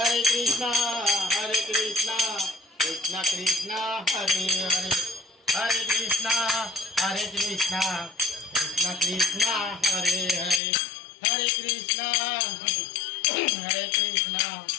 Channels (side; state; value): right; drops out; at 10.6 s